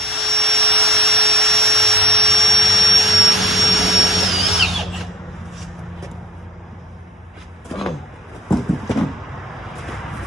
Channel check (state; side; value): normal; both; correlation 0.51